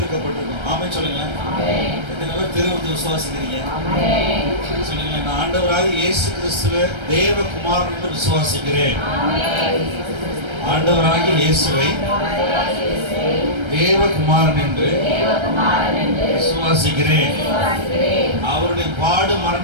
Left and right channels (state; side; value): late; left; 1.3 ms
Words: ஆமே சொல்லுங்களேன். எத்தனை பேர் வந்து விசுவாசிக்கிறீங்க சொல்லுங்களேன். நான் ஆண்டவராக இயேசு கிறிஸ்துவ தேவகுமாரன் என்று விசுவாசிக்கிறேன். ஆண்டவராகிய இயேசுவை தேவகுமாரன் என்று விசுவாசிக்கிறேன். அவருடைய பாடு